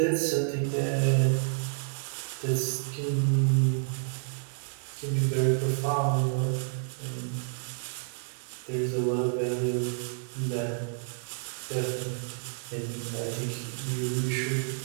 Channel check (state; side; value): silent; left; digital silence